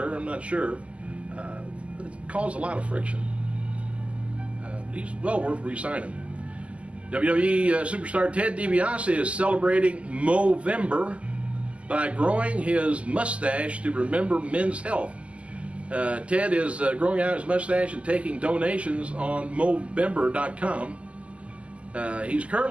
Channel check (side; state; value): left; late; 0.060 ms